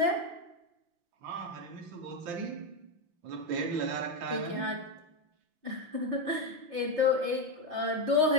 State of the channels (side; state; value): left; late; 5.8 ms